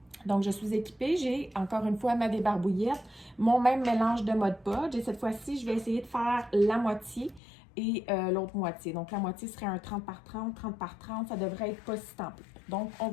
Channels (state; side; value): drops out; right; at 7.4 s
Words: Donc, je suis équipée. J'ai, encore une fois, ma débarbouillette, mon même mélange de Mod Podge. Et cette fois-ci, je vais essayer de faire la moitié et l'autre moitié. Donc, la moitié serait un 30 par 30, 30 par 30. Ça devrait être pas si tant peu. Donc, on